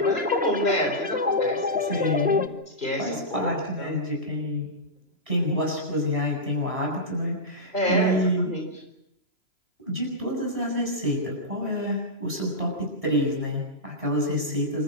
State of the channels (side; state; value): left; late; 3.0 ms